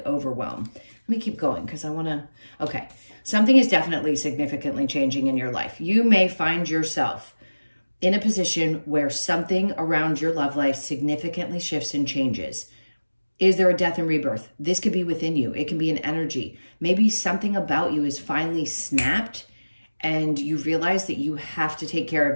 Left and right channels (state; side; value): inverted; both; correlation -1.00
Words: overwhelm. Let me keep going because I want to, okay. Something is definitely significantly changing in your life. You may find yourself in a position where something around your love life significantly shifts and changes. Is there a death and rebirth? This could be within you. It can be an energy. Maybe something about you is finally snapped and you realize that you have to take care